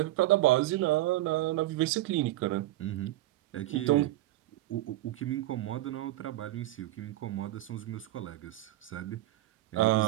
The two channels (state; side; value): quieter; left; 16.2 dB